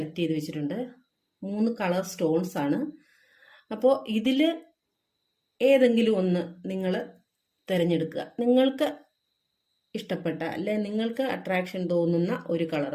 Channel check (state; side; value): identical; both; correlation 1.00